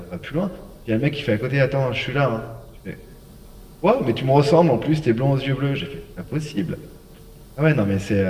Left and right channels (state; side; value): identical; both; correlation 1.00